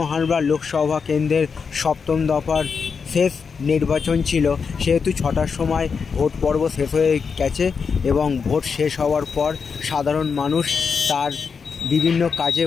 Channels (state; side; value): quieter; right; 5.7 dB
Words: হারবার লোকসভা কেন্দ্রের 7ম দফার শেষ নির্বাচন ছিল, সেহেতু 6টার সময় ভোট পর্ব শেষ হয়ে গেছে এবং ভোট শেষ হওয়ার পর সাধারণ মানুষ তার বিভিন্ন কাজে